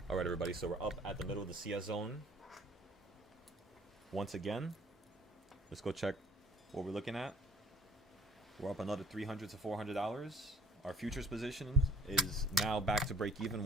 All right, everybody. So we're up at the middle of the CS zone. Once again, let's go check what we're looking at. We're up another $300 to $400. Our futures position is now back to break even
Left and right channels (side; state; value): both; normal; correlation 0.52